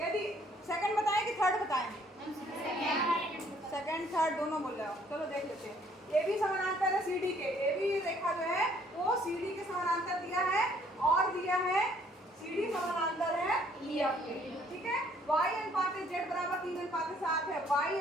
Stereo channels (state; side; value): normal; both; correlation 0.62